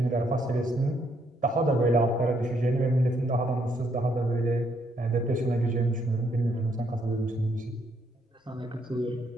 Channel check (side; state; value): both; normal; correlation 0.72